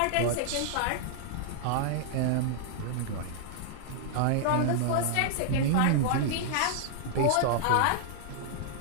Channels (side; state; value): both; different; correlation -0.01